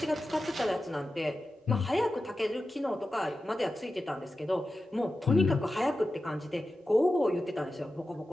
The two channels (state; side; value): normal; both; correlation 0.93